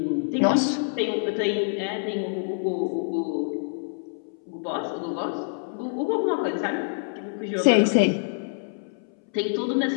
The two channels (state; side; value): silent; right; 61 dB below the other